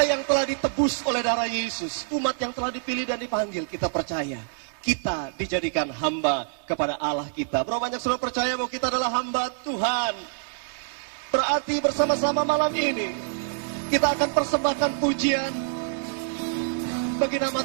yang telah ditebus oleh darah Yesus, umat yang telah dipilih dan dipanggil, kita percaya kita dijadikan hamba kepada Allah kita. Berapa banyak saudara percaya bahwa kita adalah hamba Tuhan? Berarti bersama-sama malam ini kita akan persembahkan pujian bagi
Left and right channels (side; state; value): left; silent; digital silence